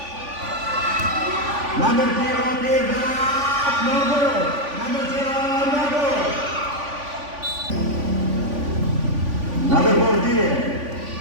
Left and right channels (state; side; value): late; left; 3.5 ms